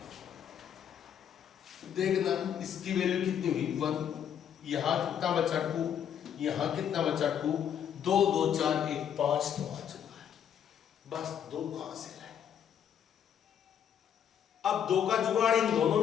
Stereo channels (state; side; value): quieter; right; 9.0 dB